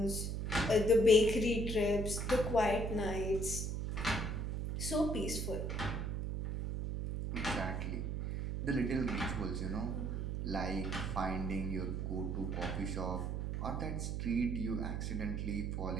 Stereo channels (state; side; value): noise; right; hum, 2 dB below the sound